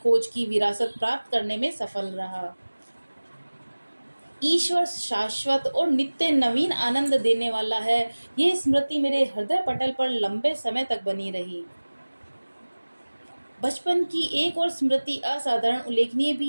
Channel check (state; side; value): inverted; both; correlation -1.00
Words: की विरासत प्राप्त करने में सफल रहा। ईश्वर शाश्वत और नित्य नवीन आनंद देने वाला है, यह स्मृति मेरे हृदय पटल पर लंबे समय तक बनी रही। बचपन की एक और स्मृति असाधारण उल्लेखनीय